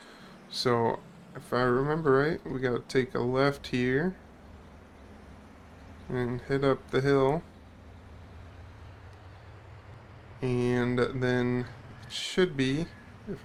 So if I remember right, we gotta take a left here and head up the hill. And then it should be, if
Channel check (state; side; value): identical; both; correlation 1.00